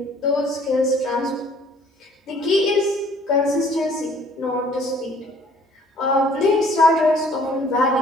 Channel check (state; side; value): normal; both; correlation 0.57